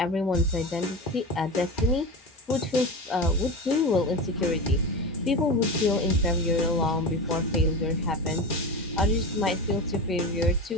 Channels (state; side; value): normal; both; correlation 0.24